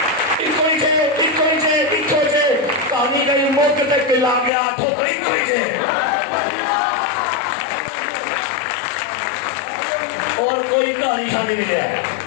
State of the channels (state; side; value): drops out; right; at 4.5 s